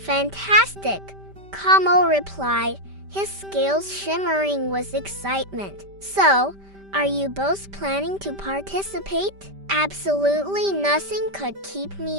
Como replied, his scales shimmering with excitement. So, are you both planning to participate? Absolutely nothing could keep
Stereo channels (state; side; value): late; left; 5.1 ms